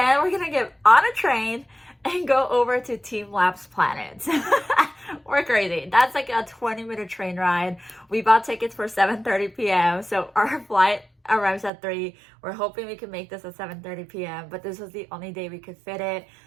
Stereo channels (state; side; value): drops out; left; at 11.7 s